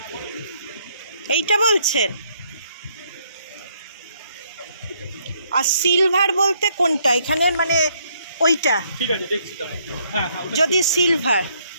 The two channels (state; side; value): inverted; both; correlation -0.70